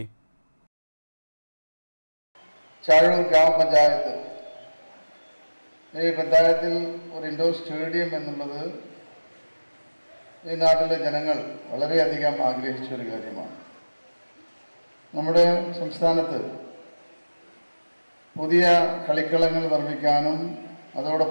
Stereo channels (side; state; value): both; inverted; correlation -1.00